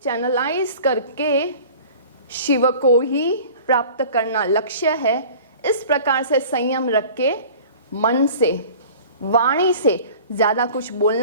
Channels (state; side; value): inverted; both; correlation -0.43